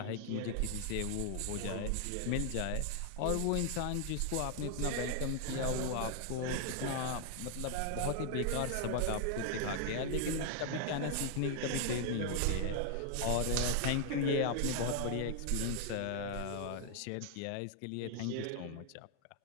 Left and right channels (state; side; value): different; both; correlation 0.00